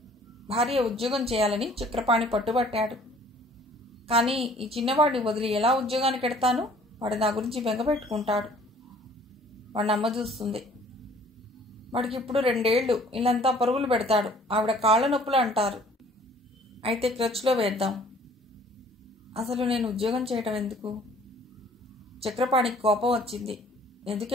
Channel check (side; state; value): both; normal; correlation 0.55